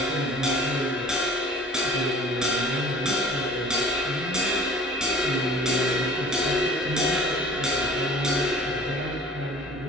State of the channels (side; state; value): both; normal; correlation 0.47